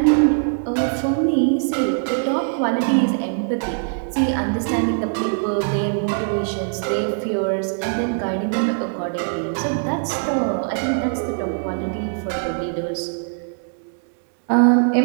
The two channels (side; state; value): left; silent; digital silence